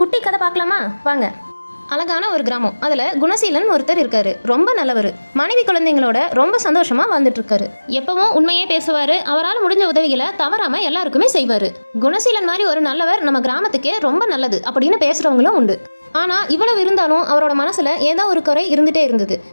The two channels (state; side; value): inverted; both; correlation -1.00